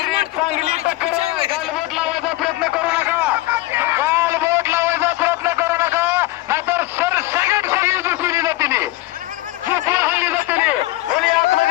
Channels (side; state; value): right; quieter; 18.1 dB